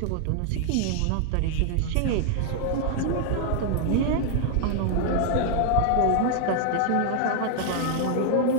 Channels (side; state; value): both; different; correlation 0.00